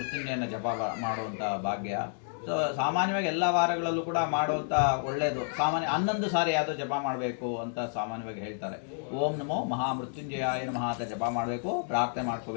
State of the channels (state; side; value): silent; right; digital silence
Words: ಜಪ ಮಾಡುವಂಥ ಭಾಗ್ಯ. ಸೊ ಸಾಮಾನ್ಯವಾಗಿ ಎಲ್ಲ ವಾರಗಳಲ್ಲೂ ಕೂಡ ಮಾಡುವಂಥ ಒಳ್ಳೆಯದು. ಸಾಮಾನ್ಯ 11 ಸಾರಿ ಯಾವುದೋ ಜಪ ಮಾಡಬೇಕು ಅಂತ ಸಾಮಾನ್ಯವಾಗಿ ಹೇಳ್ತಾರೆ. ಓಂ ನಮೋ ಮಹಾಮೃತ್ಯುಂಜಯಾಯ ನಮಃ ಅಂತ ಜಪ ಮಾಡಬೇಕು, ಪ್ರಾರ್ಥನೆ